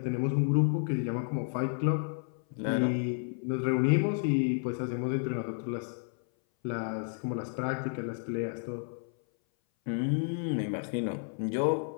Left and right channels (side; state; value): right; silent; 57 dB below the other